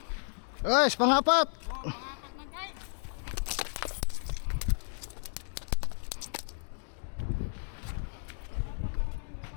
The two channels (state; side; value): silent; right; digital silence